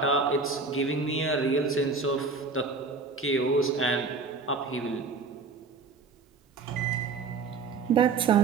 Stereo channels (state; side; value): quieter; left; 4.4 dB